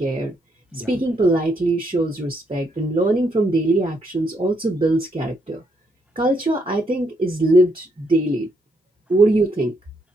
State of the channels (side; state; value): both; normal; correlation 0.75